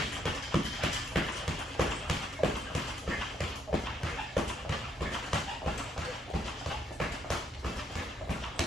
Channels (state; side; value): normal; both; correlation 0.72